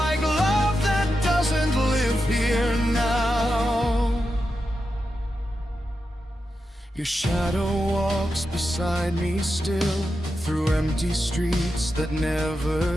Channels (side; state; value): both; normal; correlation 0.89